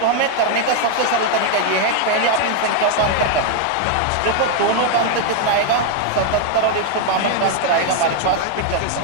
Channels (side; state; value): both; different; correlation 0.00